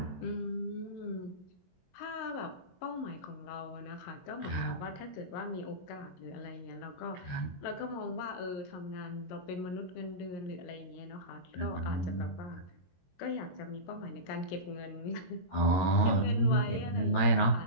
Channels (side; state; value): right; late; 22 ms